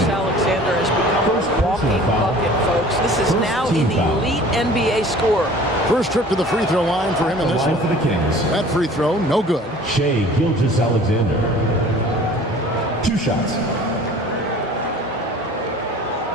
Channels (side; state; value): both; normal; correlation 0.47